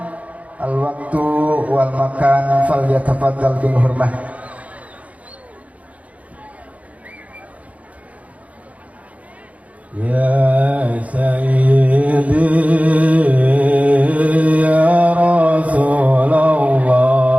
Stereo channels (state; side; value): late; left; 0.068 ms